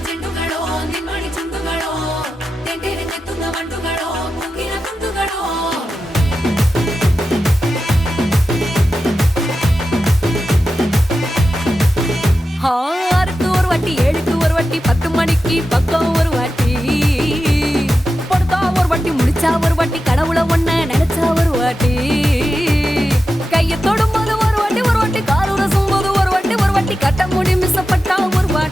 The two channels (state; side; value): normal; both; correlation 0.91